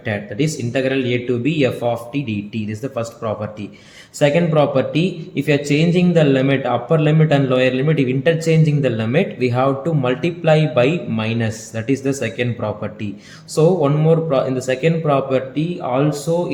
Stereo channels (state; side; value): identical; both; correlation 1.00